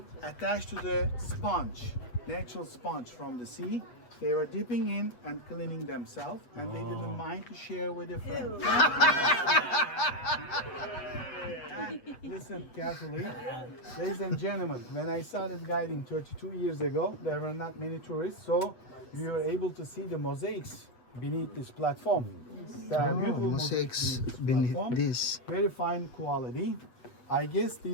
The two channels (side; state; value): right; late; 8.2 ms